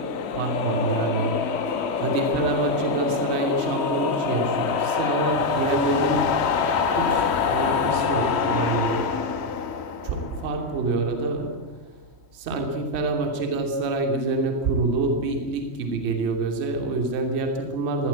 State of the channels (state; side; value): late; left; 3.1 ms